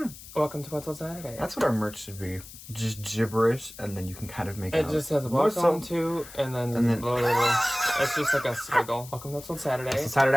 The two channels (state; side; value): noise; left; hiss, 16 dB below the sound